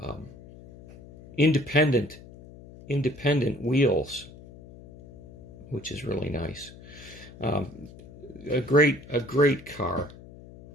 Independent wheels, which is really nice. A great car.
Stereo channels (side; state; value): left; noise; hum, 19 dB below the sound